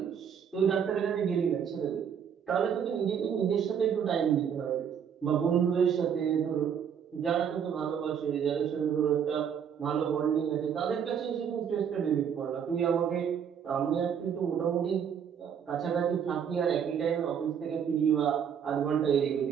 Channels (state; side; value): quieter; left; 7.9 dB